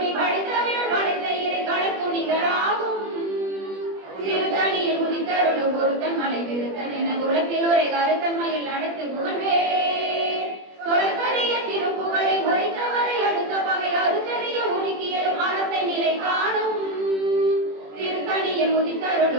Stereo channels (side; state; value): left; late; 21 ms